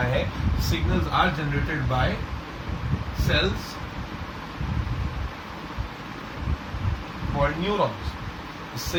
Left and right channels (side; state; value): both; identical; correlation 1.00